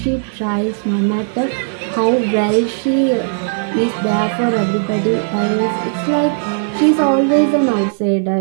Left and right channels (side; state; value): left; silent; digital silence